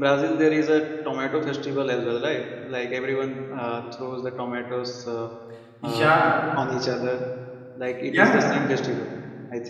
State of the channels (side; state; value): both; identical; correlation 1.00